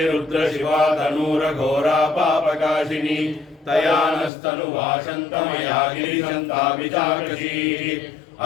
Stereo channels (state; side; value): drops out; right; at 4.3 s